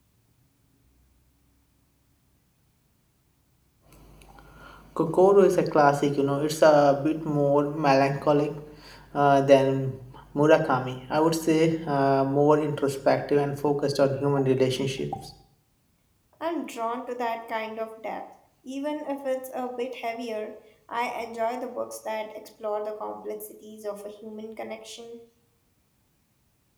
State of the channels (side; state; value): both; identical; correlation 1.00